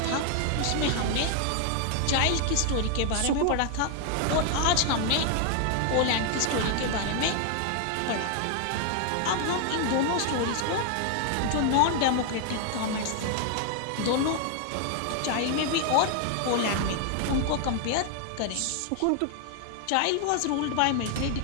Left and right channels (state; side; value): different; both; correlation 0.00